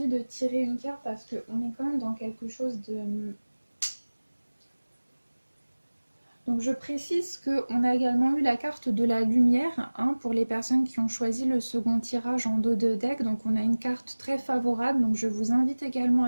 de tirer une carte parce qu'on est quand même dans quelque chose de... Donc je précise qu'on a également eu la carte de la lumière, hein, pour les personnes qui ont choisi le second tirage en dos de deck. Donc on a une carte très favorable, donc je vous invite également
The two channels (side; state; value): both; inverted; correlation -1.00